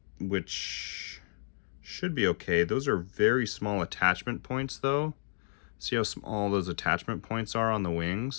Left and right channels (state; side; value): silent; right; digital silence